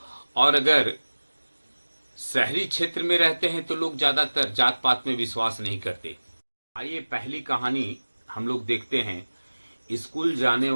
और अगर शहरी क्षेत्र में रहते हैं तो लोग ज्यादातर जात पात में विश्वास नहीं करते। आइए पहली कहानी हम लोग देखते हैं स्कूल जाने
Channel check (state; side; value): inverted; both; correlation -1.00